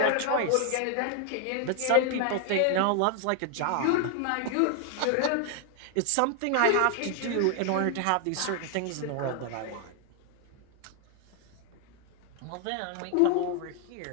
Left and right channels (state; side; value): different; both; correlation 0.00